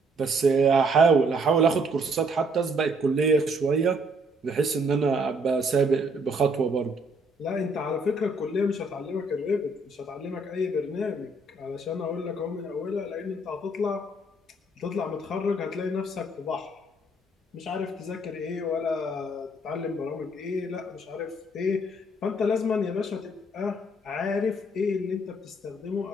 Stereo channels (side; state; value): both; normal; correlation 0.66